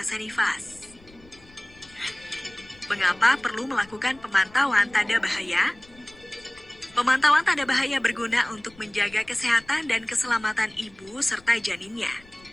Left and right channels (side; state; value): left; noise; rumble, 26 dB below the sound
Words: nifas. Mengapa perlu melakukan pemantauan tanda bahaya? Pemantauan tanda bahaya berguna untuk menjaga kesehatan dan keselamatan ibu serta janinnya.